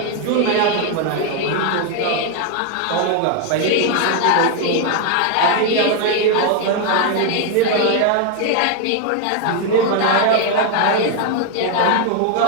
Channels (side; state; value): both; different; correlation 0.01